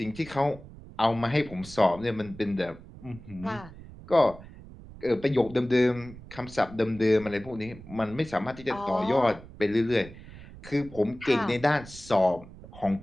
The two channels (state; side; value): noise; right; rumble, 17 dB below the sound